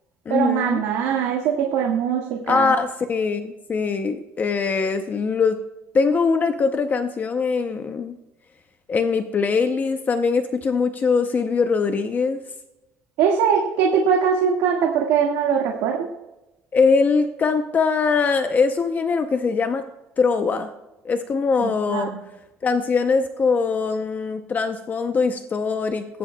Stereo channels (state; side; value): normal; both; correlation 0.61